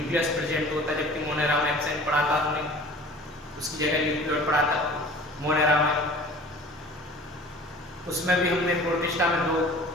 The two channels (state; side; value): normal; both; correlation 0.45